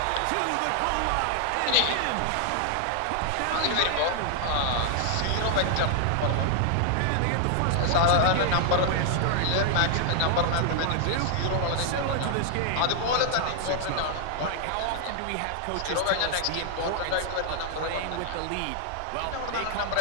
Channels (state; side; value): different; both; correlation 0.00